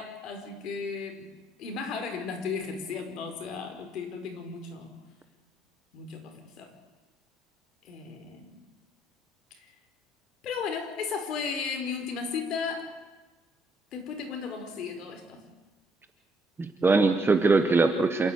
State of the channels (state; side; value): normal; both; correlation 0.72